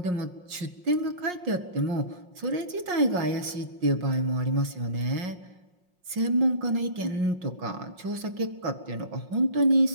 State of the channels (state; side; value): late; left; 5.6 ms